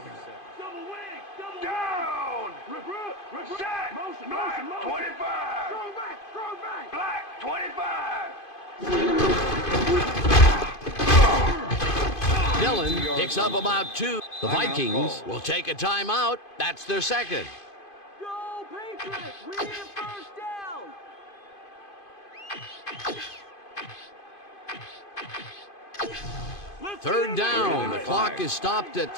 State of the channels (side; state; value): right; late; 2.5 ms